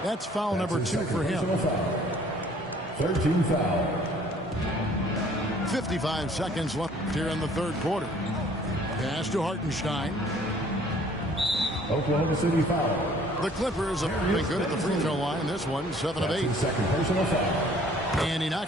That's foul number 2 for him. 13 foul. 55 seconds left here in the 3rd quarter. Pass to Hartenstein. Oklahoma City foul. The Clippers have been good at the free throw line. This one, 7 of 8. 2nd personal foul. And he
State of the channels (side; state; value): both; normal; correlation 0.56